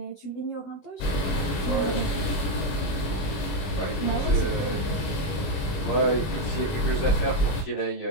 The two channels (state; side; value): late; right; 21 ms